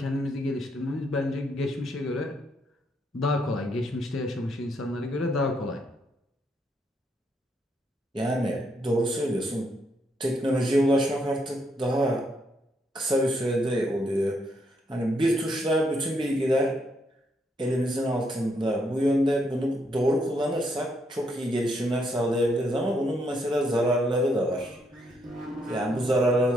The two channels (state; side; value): normal; both; correlation 0.75